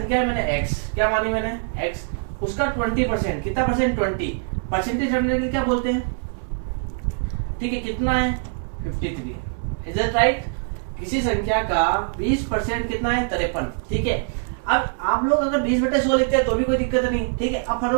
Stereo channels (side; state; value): left; silent; 63 dB below the other